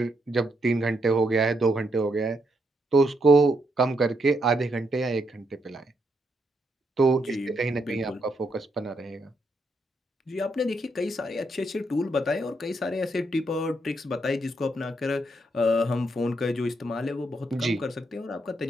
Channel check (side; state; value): both; normal; correlation 0.78